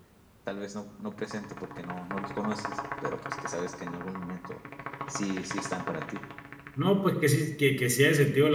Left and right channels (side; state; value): both; identical; correlation 1.00